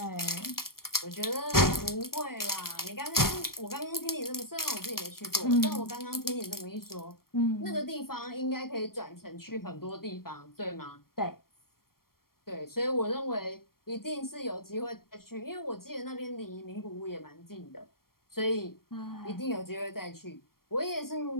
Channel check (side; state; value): right; late; 0.93 ms